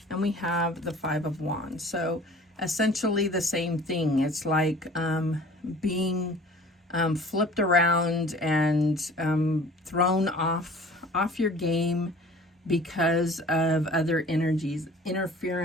And we have the Five of Wands. So essentially the same thing. It's like being flipped around and thrown off your game because of other energies.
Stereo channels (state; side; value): normal; both; correlation 0.47